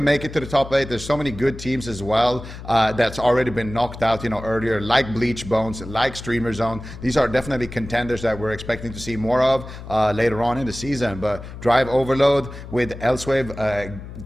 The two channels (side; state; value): left; noise; hum, 12 dB below the sound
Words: make it to the top 8. There's so many good teams as well that's already been knocked out, earlier, like Bleach Bones, like Streamer Zone. These are definitely contenders that we're expecting to see more of later on in the season. But Drive Overload with Elsewave